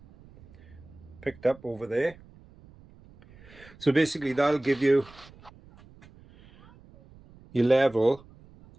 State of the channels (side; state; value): right; noise; rumble, 24 dB below the sound